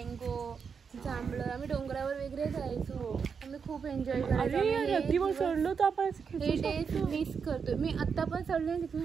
जांभळं, आम्ही डोंगरावर वगैरे जायचो. आम्ही खूप एन्जॉय करायचो. चढलो तर आपण हे डेज मिस करतोय मी. आता पण चढले तिथून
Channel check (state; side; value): quieter; left; 6.1 dB